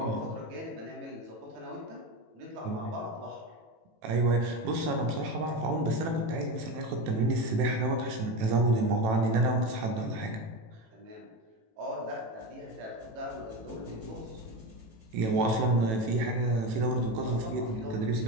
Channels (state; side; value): late; left; 18 ms